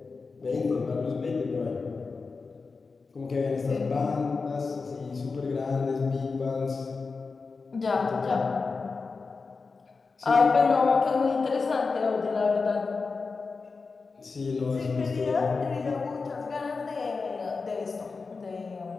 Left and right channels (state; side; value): quieter; right; 4.5 dB